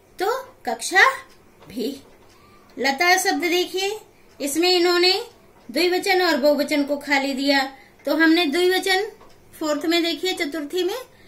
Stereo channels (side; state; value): both; identical; correlation 1.00